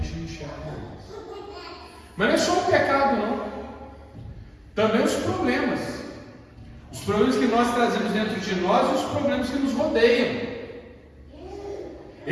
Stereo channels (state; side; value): identical; both; correlation 1.00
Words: não enxerga mais. Mas não é só o pecado, não. Também os problemas. Os problemas que nós trazemos dentro de nós e os problemas que nos rodeiam.